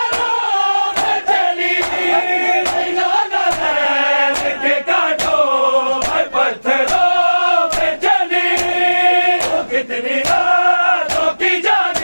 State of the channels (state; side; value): inverted; both; correlation -1.00